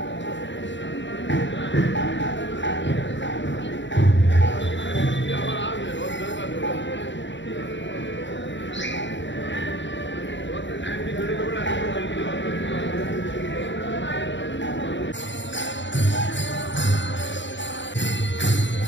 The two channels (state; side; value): late; right; 0.54 ms